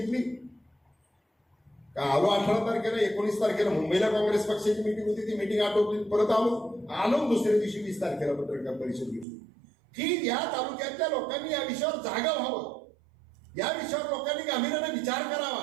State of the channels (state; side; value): drops out; left; at 9.2 s